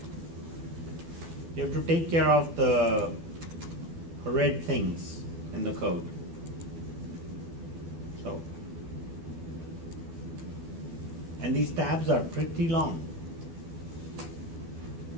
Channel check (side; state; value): left; late; 12 ms